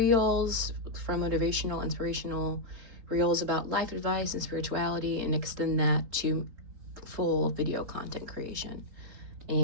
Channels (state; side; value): late; left; 3.9 ms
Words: from motivational, inspirational reels about life advice and spirituality, and extend that to full video content creation.